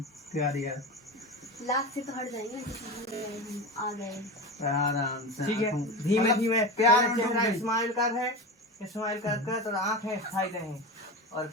प्यारी है लास्ट से तो हट जाएंगे आ गए आराम से। ठीक है धीमे धीमे प्यार चेहरा स्माइल कर तो आंखें खाई रहे और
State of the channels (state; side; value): normal; both; correlation 0.24